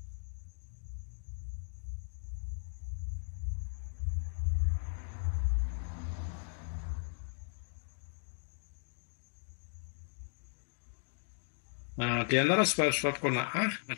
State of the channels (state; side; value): silent; right; digital silence